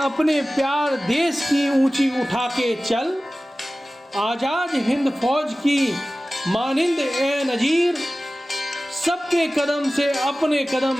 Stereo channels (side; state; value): both; normal; correlation 0.97